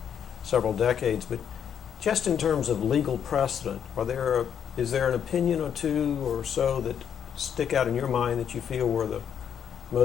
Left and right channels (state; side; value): quieter; right; 8.3 dB